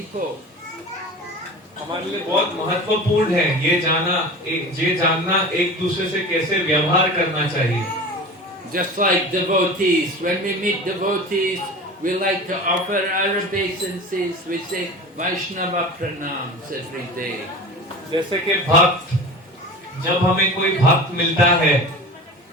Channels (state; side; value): normal; both; correlation 0.34